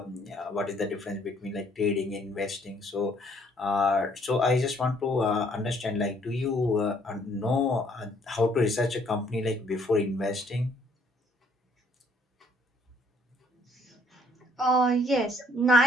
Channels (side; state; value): both; normal; correlation 0.64